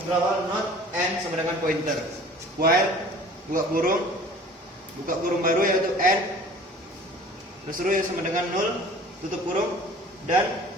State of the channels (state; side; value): normal; both; correlation 0.46